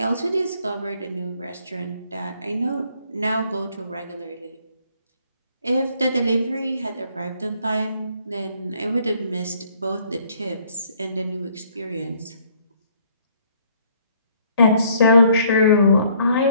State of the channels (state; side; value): inverted; both; correlation -0.63